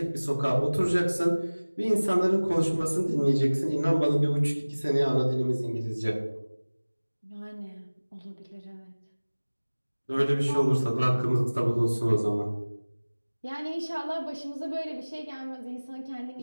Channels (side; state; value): both; inverted; correlation -1.00